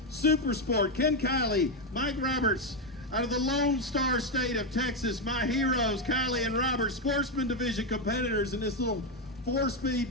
Super Sport. Ken Kiley, Mike Roberts, out of the Lone Star State of Texas. My heroes, Kiley and Roberts, Sportsman Division competitors in this little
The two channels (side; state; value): both; normal; correlation 0.06